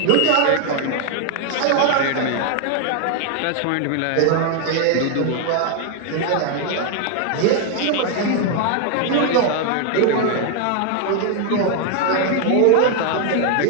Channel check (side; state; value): both; different; correlation 0.00